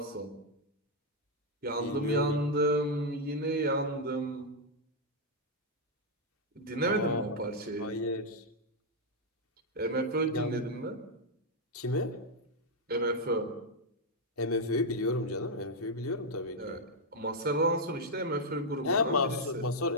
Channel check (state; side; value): normal; both; correlation -0.01